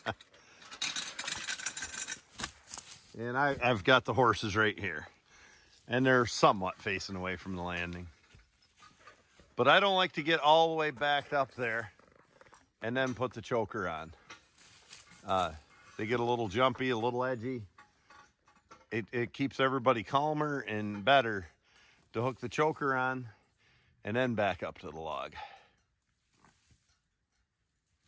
And I've got the horses right here. And they're somewhat facing away from the landing. But I don't like to get all the way backed up there and then put the choker on. They get a little jumpy, a little edgy. It keeps everybody calmer and better to hook the choker on and then back up to the log.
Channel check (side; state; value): both; identical; correlation 1.00